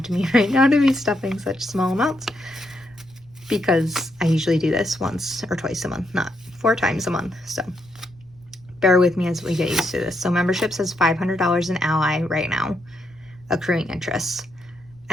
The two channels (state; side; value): noise; left; rumble, 29 dB below the sound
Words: to me right now to be stuffing such small amounts because I usually do this once or twice a month, not 4 times a month. So bear with me as we get used to this. So membership says $500 in Ally right now, accruing interest.